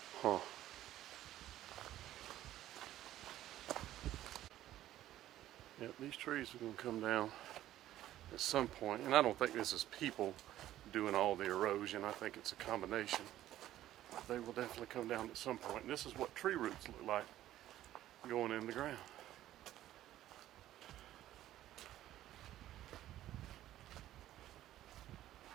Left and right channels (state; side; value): quieter; left; 13.5 dB